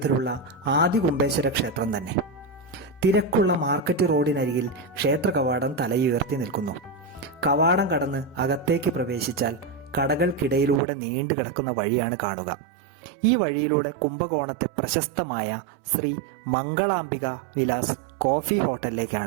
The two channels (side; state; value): left; drops out; at 10.8 s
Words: ആദികുംഭേശ്വര ക്ഷേത്രം തന്നെ. തിരക്കുള്ള മാർക്കറ്റ് റോഡിനരികിൽ ക്ഷേത്ര കവാടം തലയുയർത്തി നിൽക്കുന്നു. കവാടം കടന്ന് അകത്തേക്ക് പ്രവേശിച്ചാൽ കടകൾക്കിടയിലൂടെ നീണ്ടു കിടക്കുന്ന വഴിയാണ് കാണുക. ഈ വഴിയിലൂടെ കുംഭകോണത്തെ പ്രശസ്തമായ ശ്രീ മംഗളാംബിക വിലാസ് കോഫി